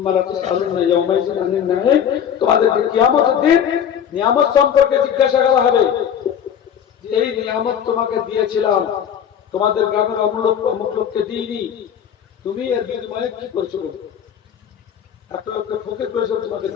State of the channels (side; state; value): right; quieter; 8.7 dB